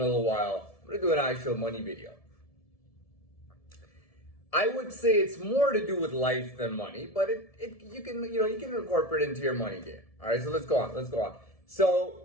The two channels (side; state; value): right; late; 1.7 ms